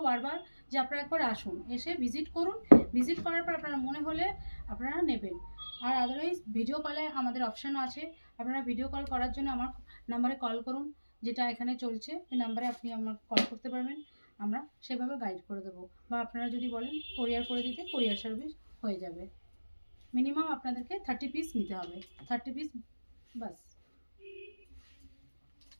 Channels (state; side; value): inverted; both; correlation -1.00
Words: বারবার, যে আপনারা একবার আসুন, এসে ভিজিট করুন। ভিজিট করার পর আপনারা মনে হলে আপনারা নেবেন। আর আদারওয়াইজ ভিডিও কলে আমাদের অপশানও আছে। আপনারা ভিডিও কল করার জন্য আমার নাম্বারে কল করুন, যেটা এখানে চলছে। এই নাম্বারে আপনি আমার কল করতে পারবেন, আমরা সেভাবে গাইড করে দেবো। বা আপনারা যদি বলেন কোরিয়ার করে দিতে, কোরিয়ার সার্ভিস হয়ে যাবে। মিনিমাম আপনাদেরকে 30 পিস নিতে হবে, 30 পিস বাস।